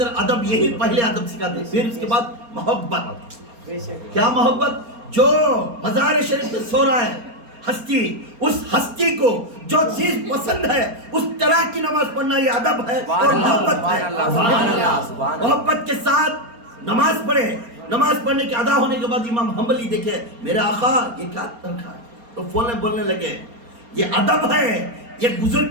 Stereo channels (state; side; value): late; left; 4.3 ms